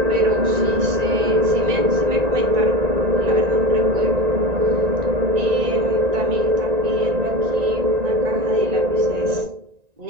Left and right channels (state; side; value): late; left; 1.9 ms